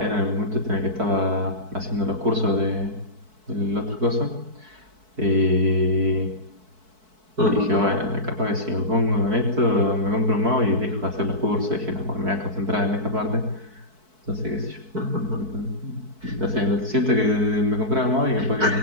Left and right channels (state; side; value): late; left; 4.6 ms